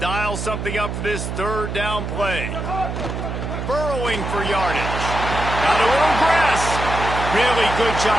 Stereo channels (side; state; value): right; noise; hum, 4 dB below the sound